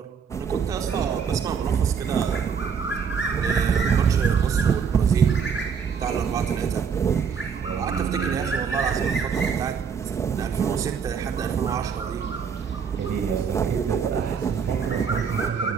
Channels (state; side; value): quieter; left; 6.6 dB